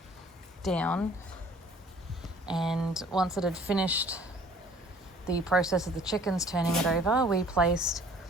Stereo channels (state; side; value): normal; both; correlation 0.53